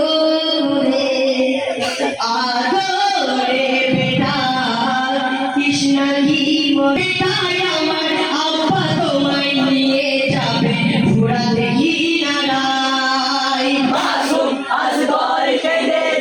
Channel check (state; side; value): identical; both; correlation 1.00